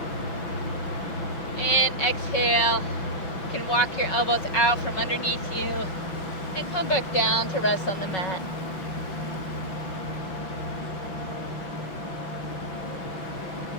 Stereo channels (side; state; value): right; late; 5.4 ms